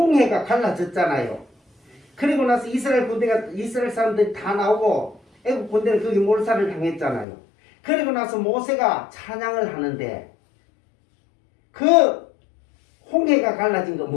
갈라졌잖아요. 그리고 나서 이스라엘 사람들이 다 나오고 애굽 군대는 거기 몰살을 당했잖아요. 그리고 나서 모세가 찬양을 하는데 그 홍해가 갈라진 거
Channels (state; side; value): drops out; right; at 7.2 s